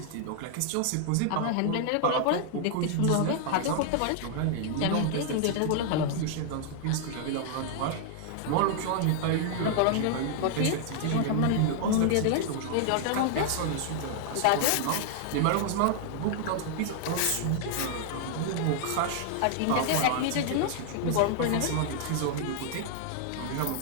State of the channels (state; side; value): different; both; correlation 0.00